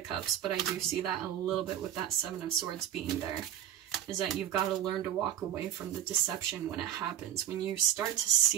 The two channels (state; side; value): quieter; left; 11.3 dB